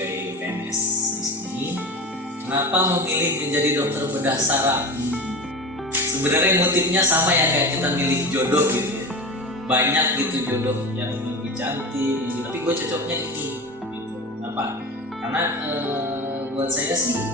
PNS di sini. Kenapa memilih menjadi dokter bedah saraf? Sebenarnya motifnya sama ya kayak kita milih jodoh gitu ya. Banyak gitu jodoh yang lebih cantik gitu. Tapi gue cocoknya ini gitu. Kenapa? Karena buat saya sih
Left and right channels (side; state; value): both; normal; correlation 0.28